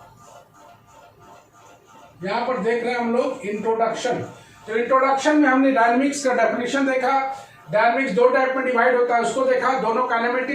यहाँ पर देख रहे हैं हम लोग इंट्रोडक्शन। तो इंट्रोडक्शन में हमने डायनेमिक्स का डेफिनेशन देखा, डायनेमिक्स दो टाइप में डिवाइड होता है उसको देखा, दोनों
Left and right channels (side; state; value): both; identical; correlation 1.00